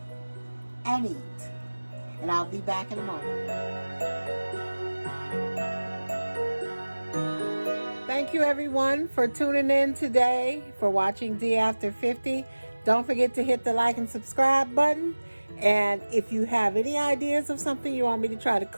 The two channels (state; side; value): inverted; both; correlation -1.00